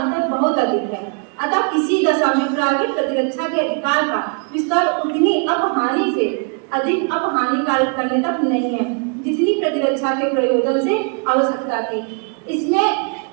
बहुत अधिक है। अतः किसी दशा में प्राइवेट प्रतिरक्षा के अधिकार का विस्तार उतनी अपहानि से अधिक अपहानिकारक करने तक नहीं है जितनी प्रतिरक्षा के प्रयोजन से आवश्यकता थी। इसमें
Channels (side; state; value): left; quieter; 39.3 dB